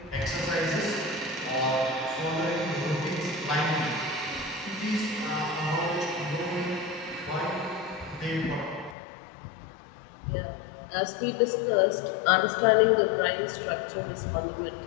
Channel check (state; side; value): drops out; right; at 9.0 s